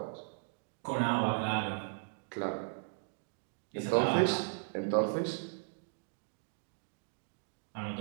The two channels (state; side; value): silent; left; digital silence